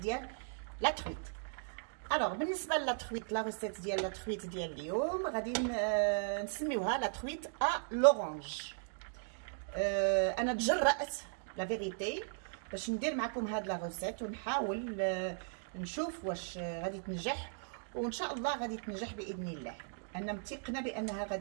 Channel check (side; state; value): left; silent; digital silence